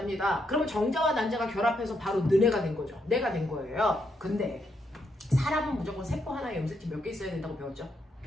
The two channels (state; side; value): normal; both; correlation 0.78